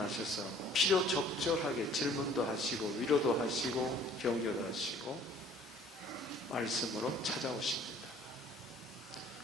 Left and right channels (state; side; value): normal; both; correlation 0.54